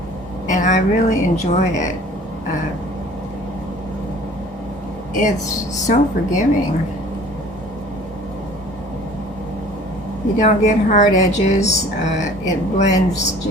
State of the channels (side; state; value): both; normal; correlation 0.49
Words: and I really enjoy it. It's so forgiving. You don't get hard edges. It blends